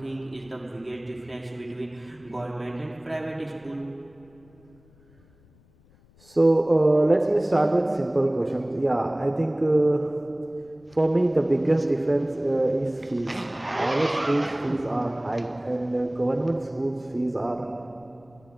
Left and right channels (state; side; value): noise; left; rumble, 29 dB below the sound